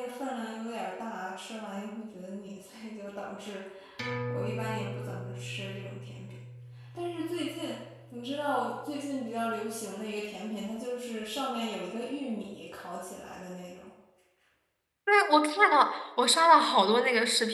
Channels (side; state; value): both; identical; correlation 1.00